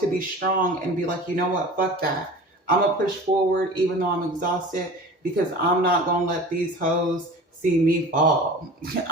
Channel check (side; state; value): both; normal; correlation 0.38